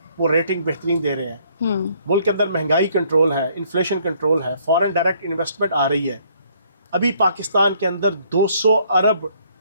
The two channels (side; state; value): both; inverted; correlation -0.64